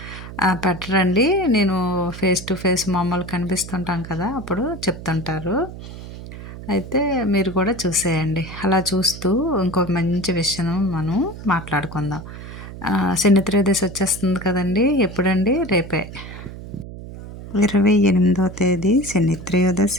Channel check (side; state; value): right; noise; hum, 12 dB below the sound